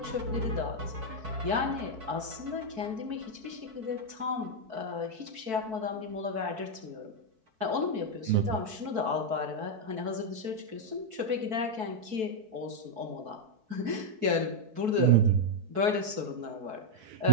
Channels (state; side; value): late; left; 4.6 ms